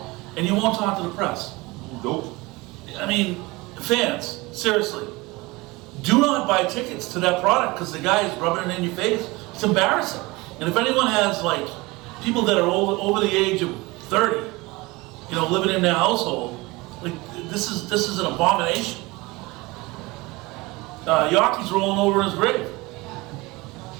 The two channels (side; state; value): left; quieter; 22.8 dB